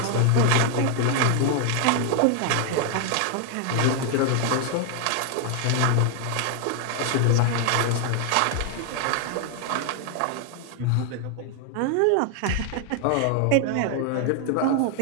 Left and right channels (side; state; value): both; different; correlation 0.00